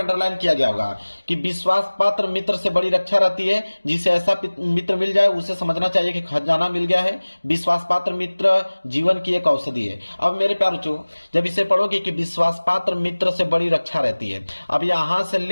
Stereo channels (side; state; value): both; inverted; correlation -1.00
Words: किया गया होगा कि विश्वास पात्र मित्र से बड़ी रक्षा रहती है, जिसे ऐसा मित्र मिल जाए उसे समझना चाहिए कि खजाना मिल गया है। विश्वास पात्र मित्र जीवन की एक औषधि है। अब मेरे प्यारे बच्चों जब इसे पढ़ोगे कि विश्वास पात्र मित्र से बड़ी रक्षा रहती है, अब यहां से